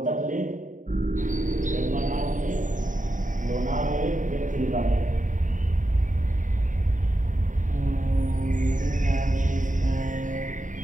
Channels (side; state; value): left; late; 0.37 ms